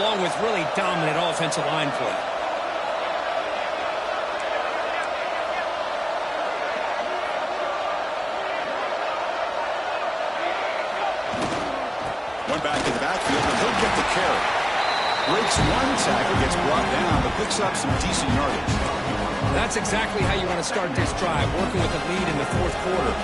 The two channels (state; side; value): identical; both; correlation 1.00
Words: with really dominant offensive line play. One back in the backfield, and he'll get the carry. Breaks one tackle, gets brought down, but picks up some decent yardage. That's exactly how you want to start this drive, working with the lead in the fourth quarter.